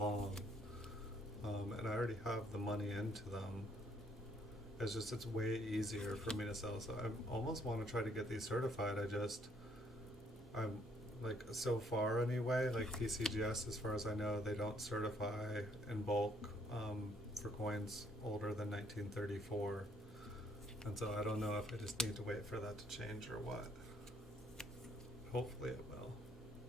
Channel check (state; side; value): normal; both; correlation 0.67